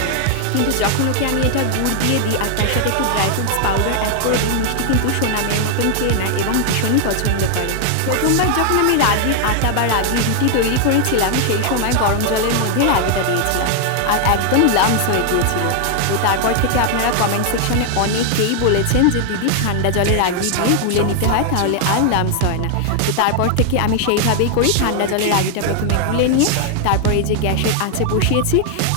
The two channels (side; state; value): both; different; correlation 0.00